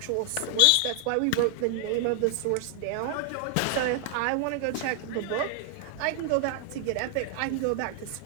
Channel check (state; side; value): different; both; correlation 0.00